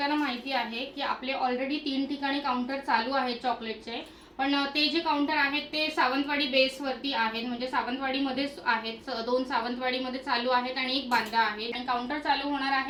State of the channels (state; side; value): identical; both; correlation 1.00